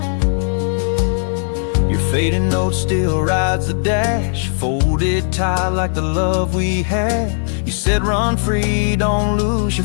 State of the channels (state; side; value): silent; right; digital silence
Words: Fading note still rides the dash, folded tight like the love we had. You said run free, don't lose your